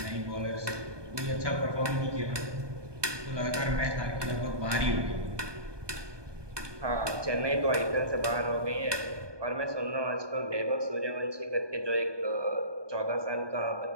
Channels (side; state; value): left; late; 1.2 ms